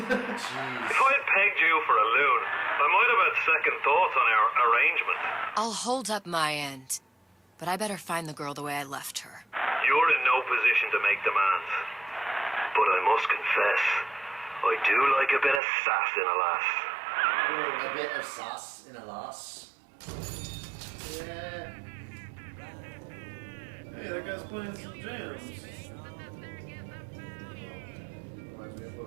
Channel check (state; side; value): drops out; left; at 15.6 s